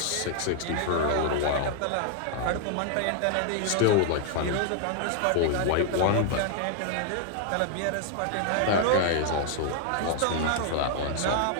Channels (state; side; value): different; both; correlation 0.00